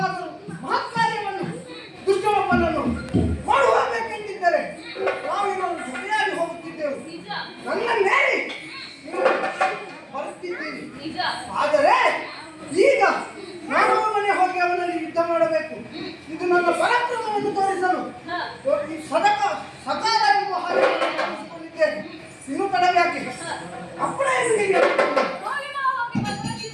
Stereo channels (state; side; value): identical; both; correlation 1.00